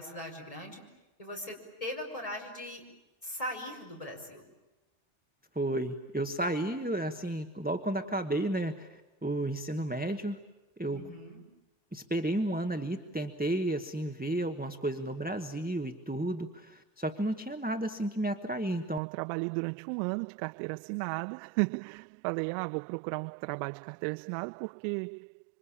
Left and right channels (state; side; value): drops out; left; at 19.0 s